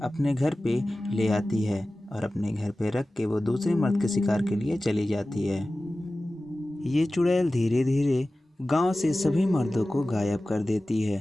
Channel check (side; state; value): both; normal; correlation 0.96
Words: अपने घर पे ले आती है और अपने घर पे रख के वो दूसरे मर्द के शिकार के लिए चली जाती है। ये चुड़ैल धीरे धीरे गांव से सभी मर्दों को गायब कर देती है।